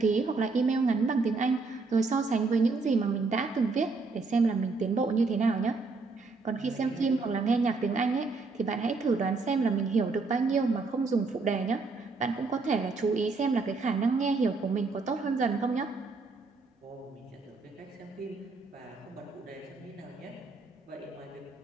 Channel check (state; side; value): quieter; left; 4.0 dB